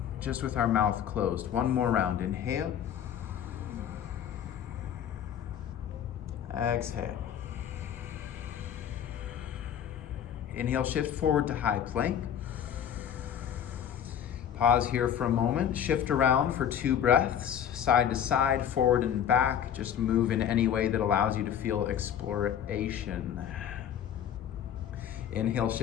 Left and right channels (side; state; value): right; quieter; 9.3 dB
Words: Just with our mouth closed. One more round. Inhale. Exhale. Inhale, shift forward to high plank. Pause here for a moment. Shift around for 2 breaths. Side to side, forward and back. Just move in any way that allows you to feel exploration. Inhale,